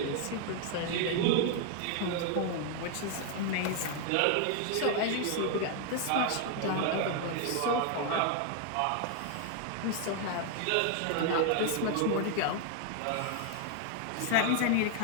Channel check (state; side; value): different; both; correlation 0.00